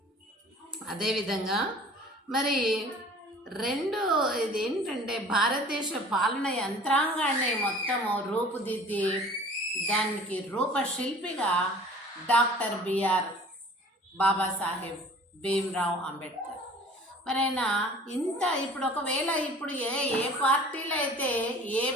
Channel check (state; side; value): normal; both; correlation 0.47